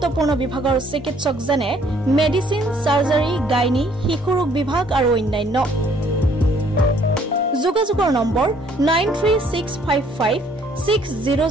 বিভাগৰ চিকিৎসক যেনে মেডিচিন সাৰ্জাৰী গাইনী শিশুৰোগ বিভাগ আৰু অন্যান্য যোগাযোগৰ নম্বৰ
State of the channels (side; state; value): both; normal; correlation 0.62